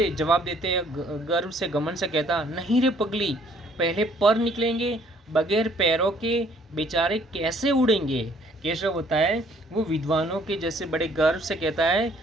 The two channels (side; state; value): both; normal; correlation 0.61